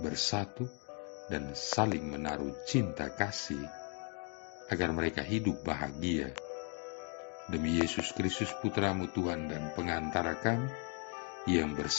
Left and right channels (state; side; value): quieter; right; 39.7 dB